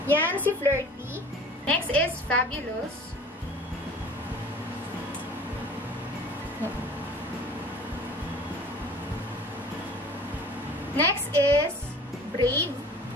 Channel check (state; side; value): normal; both; correlation 0.44